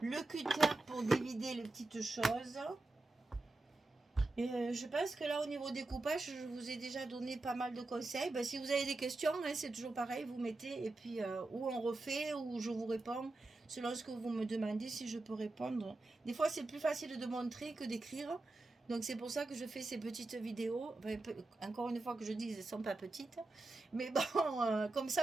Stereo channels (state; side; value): quieter; left; 3.0 dB